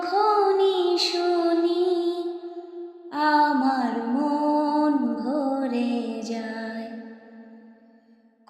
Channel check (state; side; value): identical; both; correlation 1.00